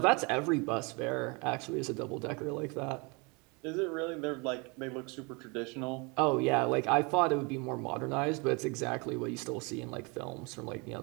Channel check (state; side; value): quieter; left; 29.7 dB